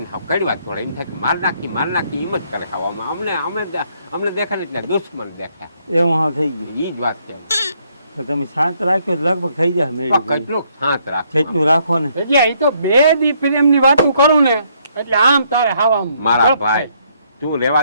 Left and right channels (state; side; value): inverted; both; correlation -0.70